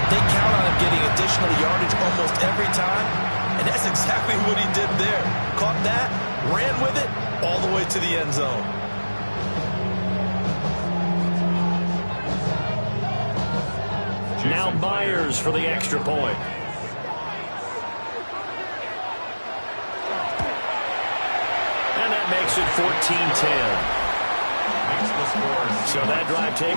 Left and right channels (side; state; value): both; inverted; correlation -1.00